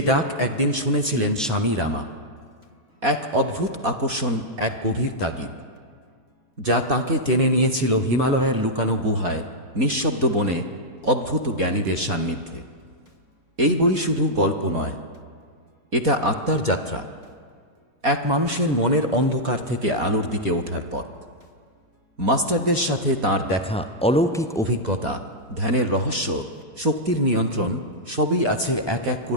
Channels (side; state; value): left; late; 4.2 ms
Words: ডাক একদিন শুনেছিলেন স্বামী রামা। এক অদ্ভুত আকর্ষণ, এক গভীর তাগিদ, যা তাকে টেনে নিয়েছিল হিমালয়ের লুকানো গুহায়, নিঃশব্দ বনে, অদ্ভুত জ্ঞানীদের সান্নিধ্যে। এই বই শুধু গল্প নয়, এটা আত্মার যাত্রা, এক মানুষের মনের অন্ধকার থেকে আলোর দিকে ওঠার পথ। মাস্টারদের সাথে তার দেখা, অলৌকিক অভিজ্ঞতা, ধ্যানের রহস্য, শক্তির নিয়ন্ত্রণ, সবই আছে এক এক